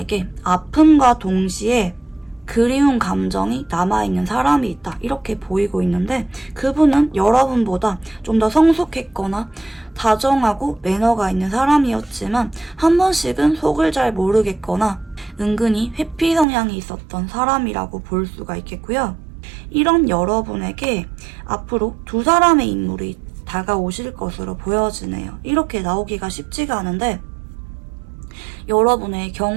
아픔과 동시에 그리운 감정이 남아있는 사람이 있다. 이렇게 보이고 있는데 그분은 여러분보다 좀 더 성숙했거나 다정하고 매너가 있는 사람이었지만 한 번씩은 속을 잘 모르겠거나 은근히 회피 성향이 있었던 사람이라고 볼 수가 있겠고요. 이런 여러분에게 앞으로 두 사람의 인물이 다가오실 것으로 보여지네요. 이렇게 나오기가 쉽지가 않은데 여러분의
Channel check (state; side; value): drops out; left; at 16.4 s